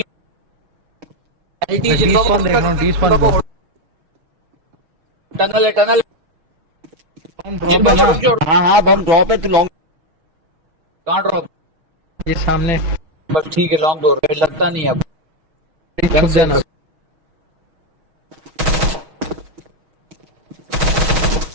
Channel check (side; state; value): left; late; 6.3 ms